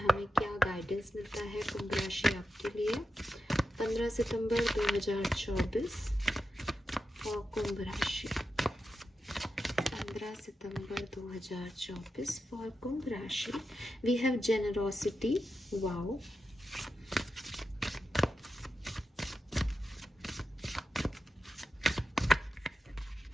क्या गाइडेंस मिलता है कुंभ राशि आपके लिए 15 सितंबर 2024 और कुंभ राशि 15 सितंबर 2024 फॉर कुंभ राशि। We have generosity, wow,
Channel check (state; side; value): normal; both; correlation 0.89